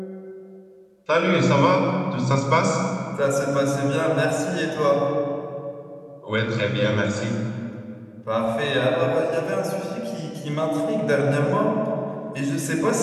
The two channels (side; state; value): both; identical; correlation 1.00